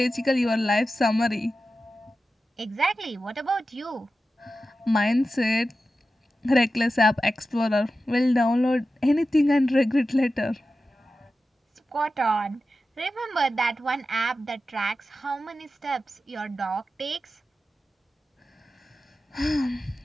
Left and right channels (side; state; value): both; normal; correlation 0.93